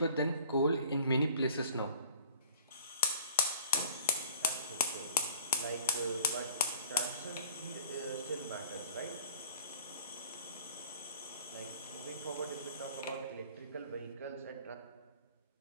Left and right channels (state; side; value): inverted; both; correlation -0.50